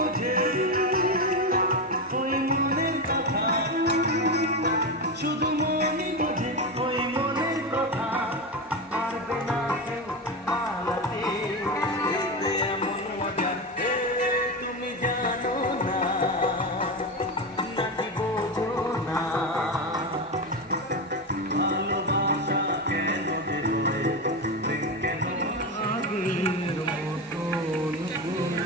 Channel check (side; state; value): both; normal; correlation 0.16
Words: ওই মনের কথা শুধু মনই বোঝে ওই মনের কথা পারবে না কেউ পালাতে এমন মজা তুমি জানো না নাকি বোঝো না ভালোবাসা কেন যে হয় প্রেম কেন আগের মতন